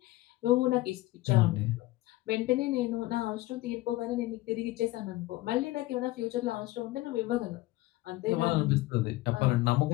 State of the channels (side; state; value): right; quieter; 18.3 dB